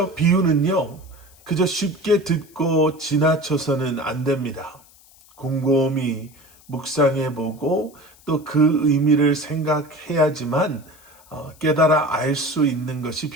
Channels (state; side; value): noise; left; hiss, 27 dB below the sound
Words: 비유는요, 그저 쉽게 듣고 지나쳐서는 안 됩니다. 곰곰이 묵상해 보고 또 그 의미를 생각해야지만 깨달아 알 수 있는 것이